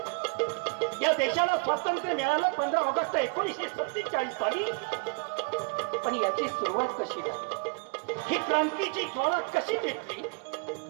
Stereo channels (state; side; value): quieter; left; 32.8 dB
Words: या देशाला स्वातंत्र्य मिळालं 15 ऑगस्ट 1947 साली। पण याची सुरुवात कशी झाली, ही क्रांतीची ज्वाळा कशी पेटली,